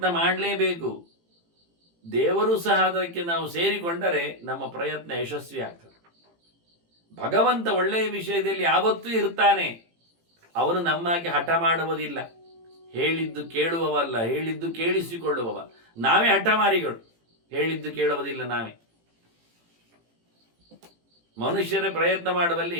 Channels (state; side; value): late; left; 18 ms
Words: ಮಾಡಲೇಬೇಕು. ದೇವರು ಸಹ ಅದಕ್ಕೆ ನಾವು ಸೇರಿಕೊಂಡರೆ ನಮ್ಮ ಪ್ರಯತ್ನ ಯಶಸ್ವಿ ಆಗ್ತದೆ. ಭಗವಂತ ಒಳ್ಳೆಯ ವಿಷಯದಲ್ಲಿ ಯಾವತ್ತೂ ಇರ್ತಾನೆ. ಅವನು ನಮ್ಮಾಗಿ ಹಠ ಮಾಡುವುದಿಲ್ಲ. ಹೇಳಿದ್ದು ಕೇಳುವವಲ್ಲ, ಹೇಳಿದ್ದು ಕೇಳಿಸಿಕೊಳ್ಳುವವ. ನಾವೇ ಹಠಮಾರಿಗಳು, ಹೇಳಿದ್ದು ಕೇಳುವುದಿಲ್ಲ ನಾವೇ. ಮನುಷ್ಯರೇ ಪ್ರಯತ್ನ